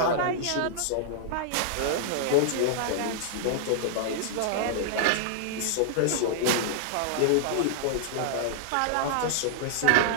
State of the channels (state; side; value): different; both; correlation -0.01